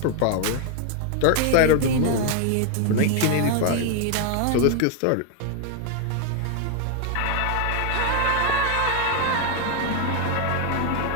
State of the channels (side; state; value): both; different; correlation 0.00